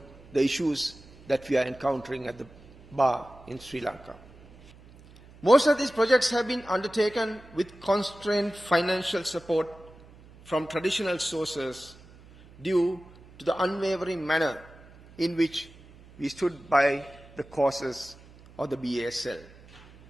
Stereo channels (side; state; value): right; noise; hum, 23 dB below the sound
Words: the issues that we are encountering at the bar in Sri Lanka. Most of these projects have been undertaken with constrained financial support from traditional sources due to the unwavering manner in which we stood by the causes of the BASL.